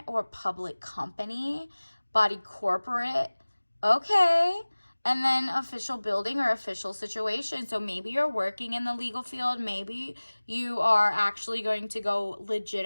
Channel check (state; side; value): inverted; both; correlation -1.00